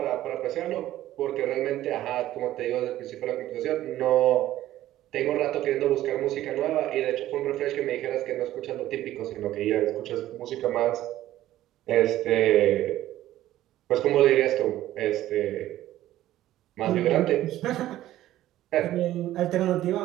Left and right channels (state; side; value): quieter; left; 14.1 dB